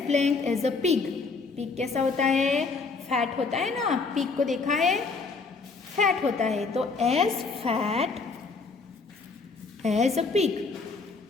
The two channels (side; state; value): right; quieter; 4.3 dB